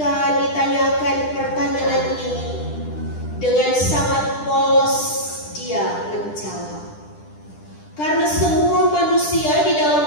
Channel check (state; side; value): late; right; 10 ms